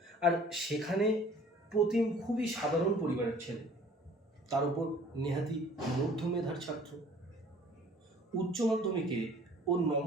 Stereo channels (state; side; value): normal; both; correlation 0.52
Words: আর সেখানে প্রতিম খুবই সাধারণ পরিবারের ছেলে, তার উপর নেহাতি মধ্যমেধার ছাত্র। উচ্চ মাধ্যমিকে ওর